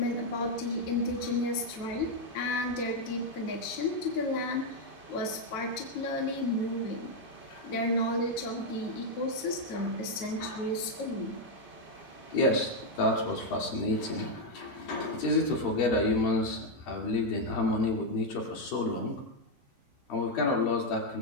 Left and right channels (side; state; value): both; normal; correlation 0.02